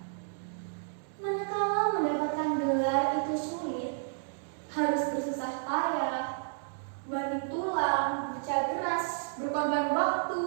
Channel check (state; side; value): silent; left; 57 dB below the other